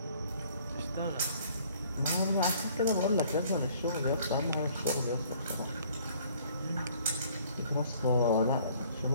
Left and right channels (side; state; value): both; inverted; correlation -0.58